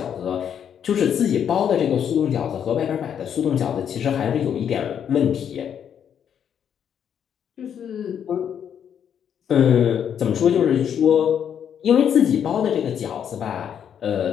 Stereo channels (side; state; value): right; quieter; 8.6 dB